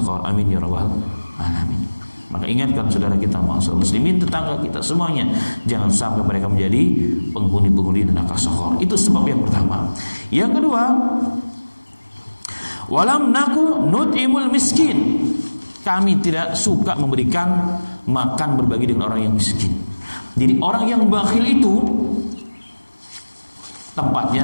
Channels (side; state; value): both; inverted; correlation -1.00